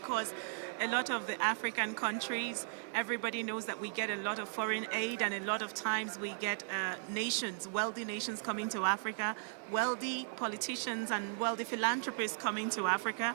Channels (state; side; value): silent; left; digital silence